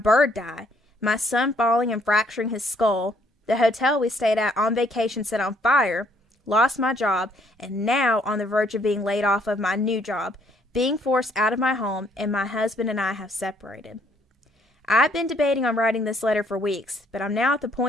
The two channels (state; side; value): normal; both; correlation 0.66